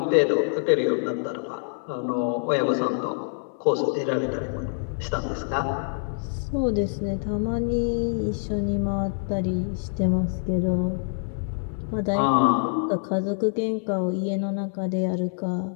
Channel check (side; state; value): right; silent; 61 dB below the other